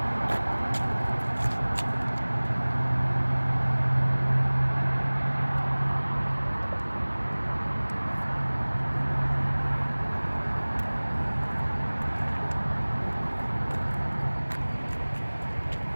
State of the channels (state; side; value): inverted; both; correlation -1.00